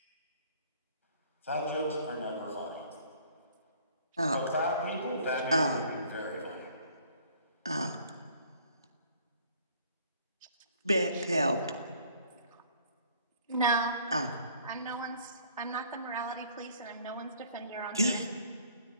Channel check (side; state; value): both; inverted; correlation -0.57